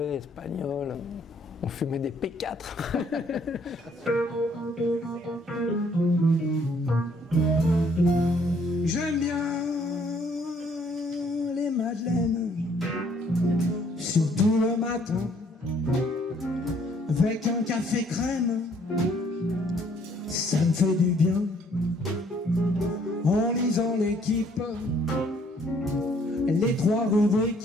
espagnol. On fumait des P4. J'aime bien les madeleines, surtout le matin, avec un café crème, ça me fait du bien. En lisant l'équipe, les 3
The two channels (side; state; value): both; normal; correlation 0.64